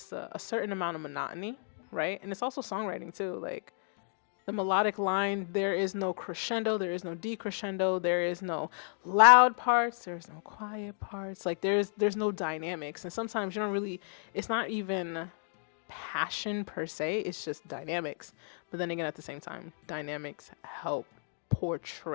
a certain amount of monotony, right? And it's also songwriting too. Like the melodic line, there is no crescendo, there is no decrescendo, there is no loud parts, there's no quiet parts. Like there's no dynamics. And sometimes you don't really, it's not even passion per se, it's just dynamics. But then again, at the same time, dynamics help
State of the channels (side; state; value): right; silent; 56 dB below the other